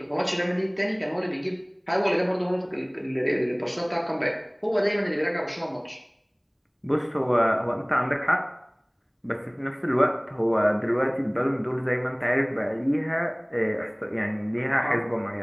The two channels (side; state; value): both; identical; correlation 1.00